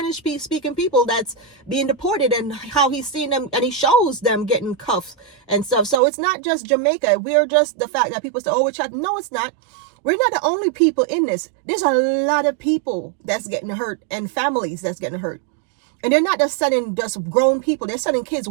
speaking people that's being deported and how he's seen them, and he shows them getting cuffs and stuff. So it's not just Jamaica. We're just the fact that people say, oh, we're chatting. No, it's not. We're not the only people in this. There's a lot of people that's getting hurt and families that's getting hurt. And they're not just sending just grown people. They're sending kids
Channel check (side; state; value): left; drops out; at 6.0 s